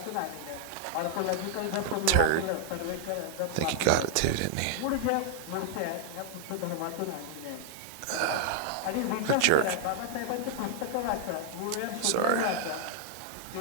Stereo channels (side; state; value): both; different; correlation 0.00